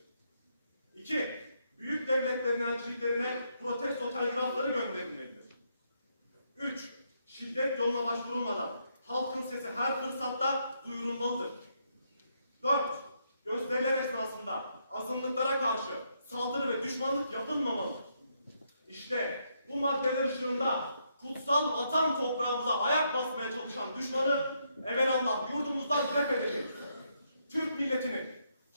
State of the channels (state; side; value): inverted; both; correlation -0.77